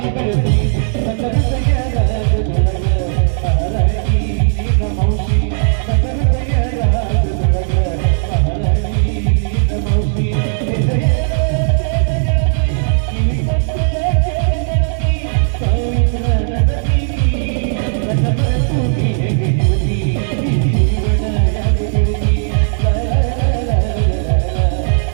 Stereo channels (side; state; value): left; silent; 69 dB below the other